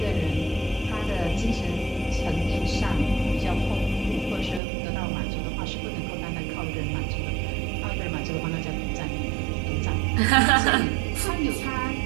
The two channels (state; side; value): drops out; left; at 4.6 s